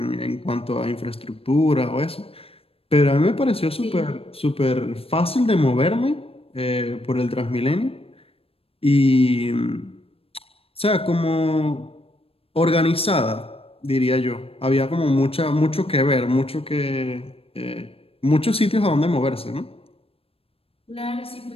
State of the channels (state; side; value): late; right; 0.28 ms